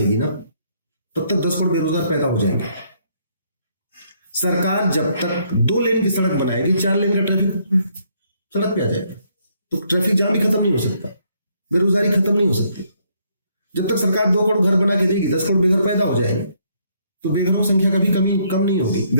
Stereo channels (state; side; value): inverted; both; correlation -0.70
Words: ना, तब तक 10 करोड़ बेरोजगार पैदा हो जाएंगे। सरकार जब तक 2 लेन की सड़क बनाएगी, 4 लेन का ट्रैफिक सड़क पे आ जाएगा, तो ट्रैफिक जाम भी खत्म नहीं हो सकता, बेरोजगारी खत्म नहीं हो सकती। जब तक सरकार 2 करोड़ घर बना के देगी, 10 करोड़ बेघर पैदा हो जाएंगे, तो बेघरों की संख्या कभी कम नहीं होगी,